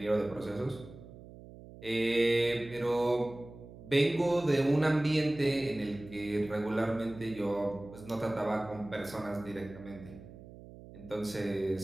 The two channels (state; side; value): noise; right; hum, 17 dB below the sound